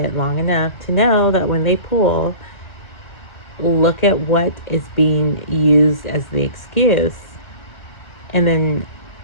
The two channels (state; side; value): late; right; 1.4 ms